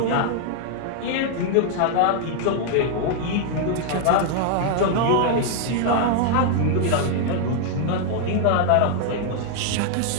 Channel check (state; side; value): different; both; correlation 0.00